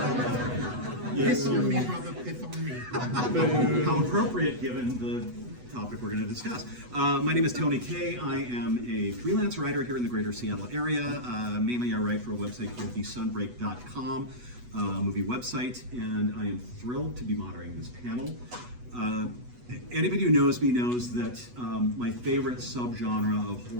Piss on me, brother, pith on me. How appropriate given the topic we're going to discuss. My name is Tony K. I am a freelance writer here in the greater Seattle area. Mainly I write for a website called thesunbreak.com, movie website, and I am thrilled to be moderating this panel. Anybody who knows me knows that my favorite subgenre of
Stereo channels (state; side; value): late; left; 8.1 ms